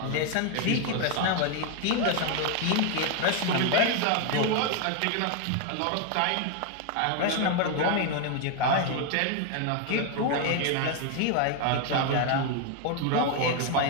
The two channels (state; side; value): different; both; correlation 0.01